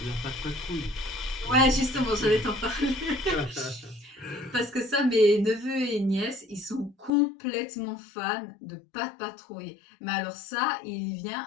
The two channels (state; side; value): drops out; right; at 7.1 s